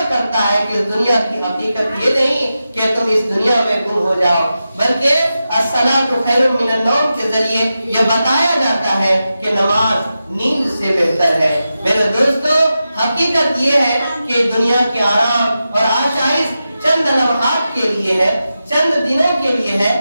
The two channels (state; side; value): inverted; both; correlation -0.91